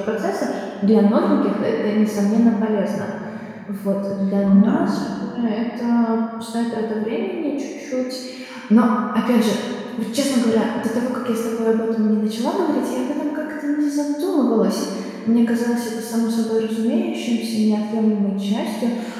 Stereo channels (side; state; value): both; identical; correlation 1.00